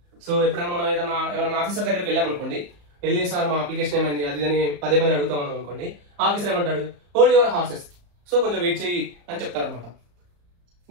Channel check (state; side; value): late; left; 34 ms